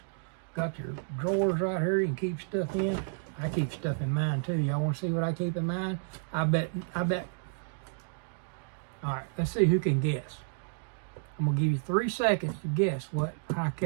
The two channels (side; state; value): left; silent; digital silence